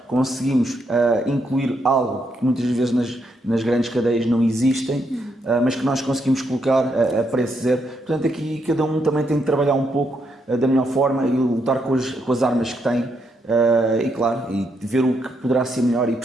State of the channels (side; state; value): both; normal; correlation 0.78